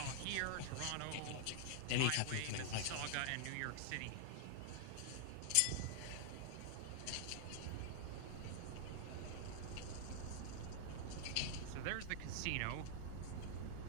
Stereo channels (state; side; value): different; both; correlation -0.01